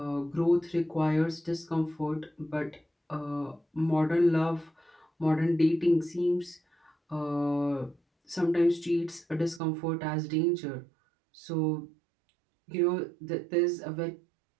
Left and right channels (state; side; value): drops out; left; at 9.6 s